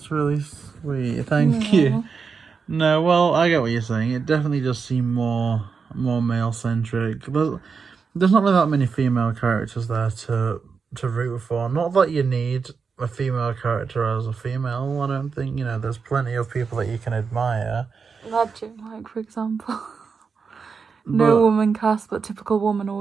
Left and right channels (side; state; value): left; quieter; 5.4 dB